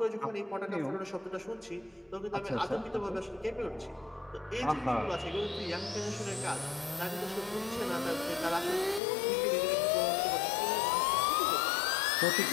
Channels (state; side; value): drops out; right; at 9.0 s